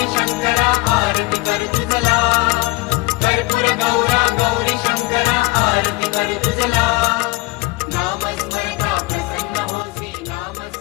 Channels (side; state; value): right; quieter; 22.0 dB